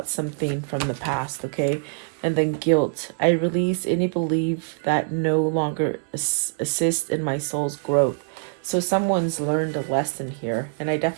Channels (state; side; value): silent; left; 63 dB below the other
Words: something from the past, okay? And then guilt. I release any belief that no longer assists in my soul's growth. So someone's learned a lesson here. And I